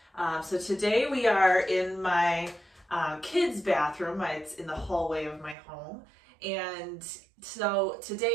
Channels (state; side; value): drops out; left; at 5.6 s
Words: So today we are in my kids' bathroom. It's in the hallway of my home. And so